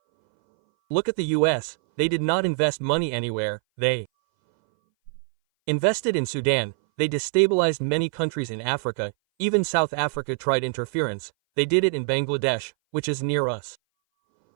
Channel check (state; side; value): silent; left; 60 dB below the other